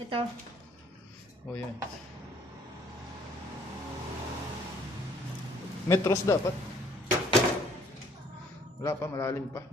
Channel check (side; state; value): both; normal; correlation 0.61